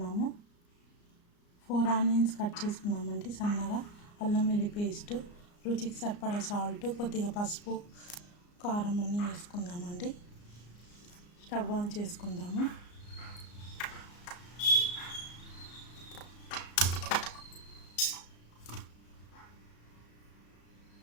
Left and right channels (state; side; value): late; right; 34 ms